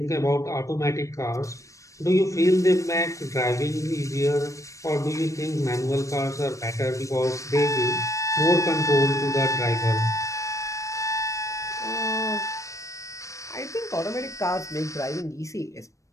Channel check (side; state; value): right; late; 0.15 ms